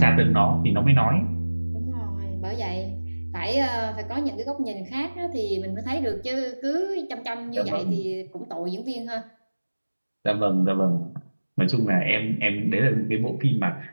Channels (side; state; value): both; inverted; correlation -1.00